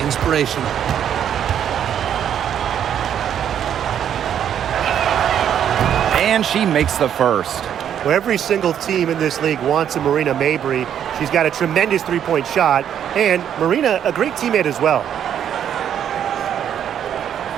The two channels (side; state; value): left; quieter; 9.4 dB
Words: inspirational. And she makes the first. Well, every single team in this league wants a Marina Mabry. She's got a tremendous three-point shot, and Marina, a great teammate as well.